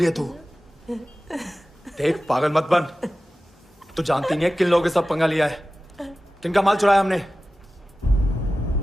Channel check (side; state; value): both; normal; correlation 0.95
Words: तू। देख, पागल मत बन। तू जानती नहीं है किन लोगों के साथ पंगा लिया है, किनका माल चुराया हमने।